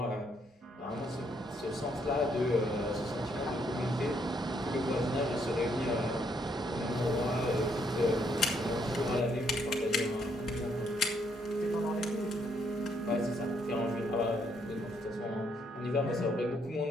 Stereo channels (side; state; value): both; normal; correlation 0.72